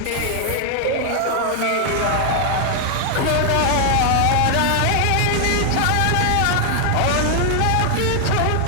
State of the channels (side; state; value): both; different; correlation 0.00